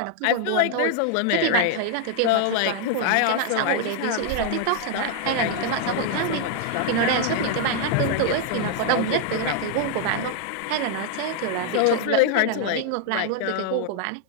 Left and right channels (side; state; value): both; different; correlation 0.00